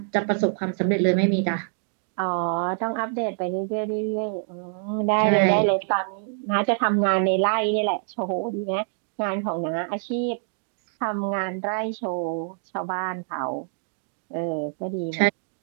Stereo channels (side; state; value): left; silent; digital silence